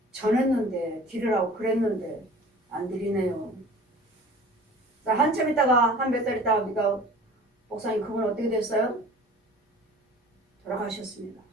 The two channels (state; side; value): normal; both; correlation 0.45